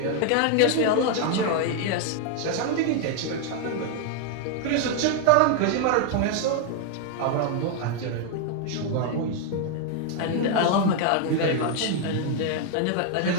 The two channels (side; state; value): both; different; correlation 0.00